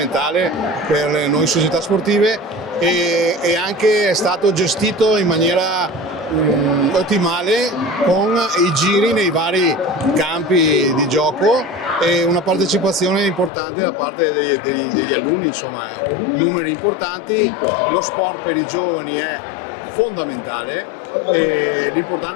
per noi società sportive, e anche è stato gestito in maniera ottimale con i giri nei vari campi di gioco e una partecipazione importante da parte degli alunni, insomma numeri importanti. Lo sport per i giovani è fondamentale e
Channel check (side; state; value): right; drops out; at 13.5 s